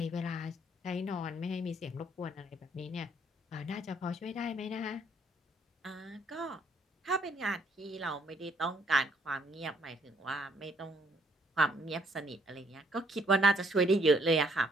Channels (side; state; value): both; normal; correlation 0.67